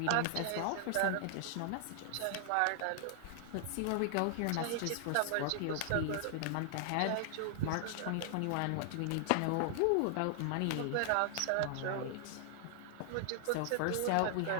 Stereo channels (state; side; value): different; both; correlation -0.01